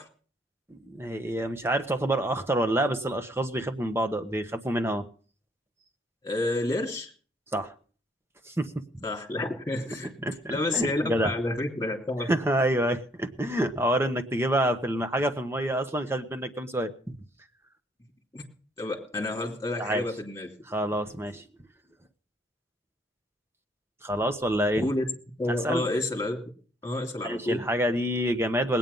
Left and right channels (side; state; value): both; normal; correlation 0.66